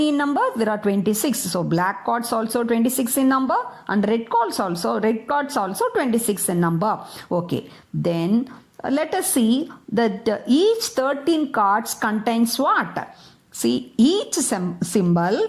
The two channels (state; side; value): identical; both; correlation 1.00